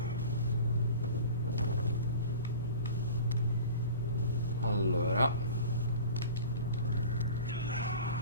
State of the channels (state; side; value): inverted; both; correlation -0.39